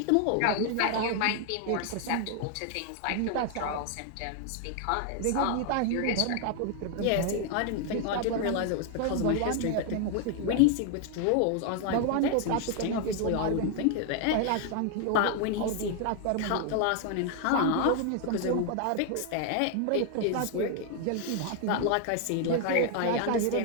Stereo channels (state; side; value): different; both; correlation 0.00